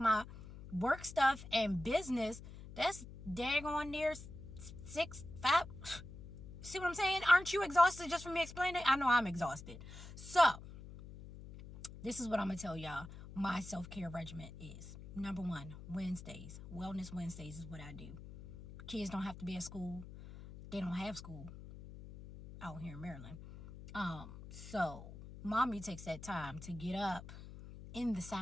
work stuff and business, that's daggone near 6, 5. See what I'm saying? Aren't you exhausted just from me explaining it? I know I'm exhausted. So, this is what I'm going to tell y'all my self-care regimen is. Number 1, Wednesdays. Wellness Wednesdays is what I do. Kids don't have to be at school. They don't have school out here in Maryland. So mommy takes that time to get up in the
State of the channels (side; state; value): left; noise; hum, 14 dB below the sound